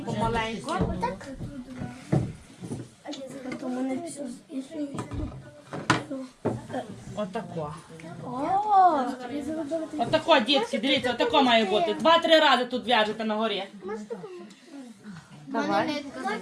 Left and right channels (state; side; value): identical; both; correlation 1.00